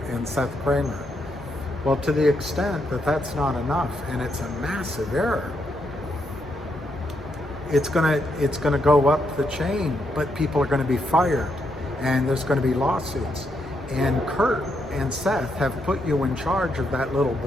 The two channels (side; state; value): both; normal; correlation 0.79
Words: and Seth Kramer. Well, to the extent that that's not enough, and it's a massive error, it's gonna go up the chain, but people are gonna be fired, and there's gonna be lawsuits. And Kurt and Seth have put you in charge of that little